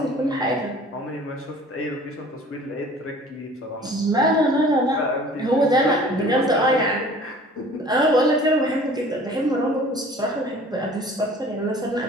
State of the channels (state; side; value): normal; both; correlation 0.48